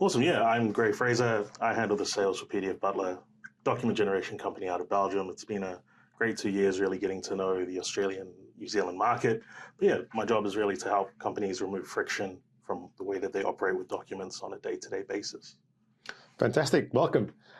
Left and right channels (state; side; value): identical; both; correlation 1.00